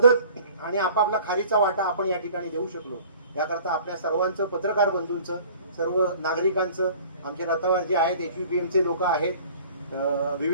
आणि आपापला खारीचा वाटा आपण या ठिकाणी देऊ शकलो. याकरता आपल्या सर्वांचं, पत्रकार बंधूंचं, सर्व नागरिकांचं, आमचे रथावर जे आहेत, HVPMचे लोक आहेत,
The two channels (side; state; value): both; inverted; correlation -0.49